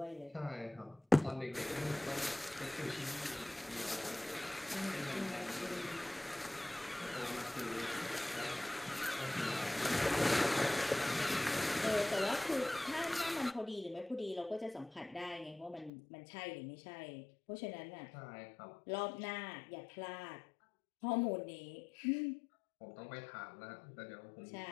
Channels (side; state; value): right; drops out; at 15.9 s